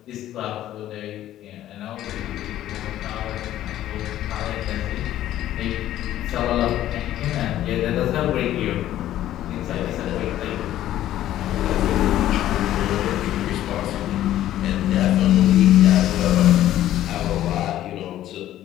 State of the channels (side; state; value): right; quieter; 13.0 dB